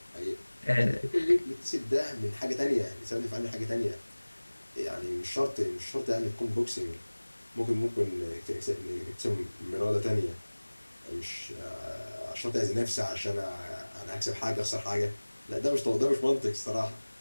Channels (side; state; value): both; inverted; correlation -1.00